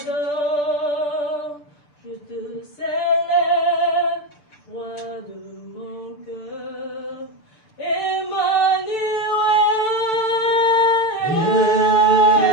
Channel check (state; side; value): late; right; 6.8 ms